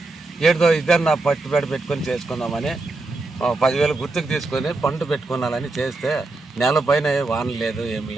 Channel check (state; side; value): quieter; left; 3.2 dB